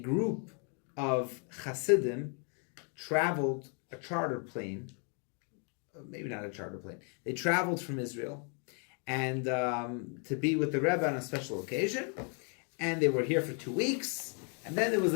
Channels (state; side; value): quieter; right; 39.2 dB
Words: of Hasidim traveled a charter plane, maybe not a charter plane. They traveled from Israel and to be with the Rebbe on a special occasion, and they were here for 2 weeks, and then it was